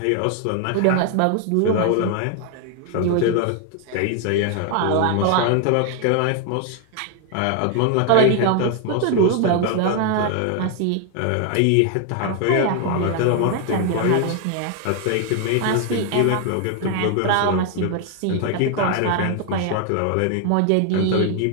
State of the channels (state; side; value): different; both; correlation 0.00